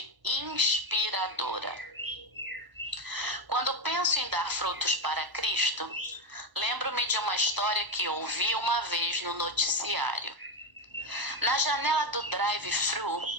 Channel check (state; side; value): late; left; 1.0 ms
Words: Inspiradora. Quando penso em dar frutos para Cristo, lembro-me de uma história que ouvi uma vez no noticiário. Na janela do drive-thru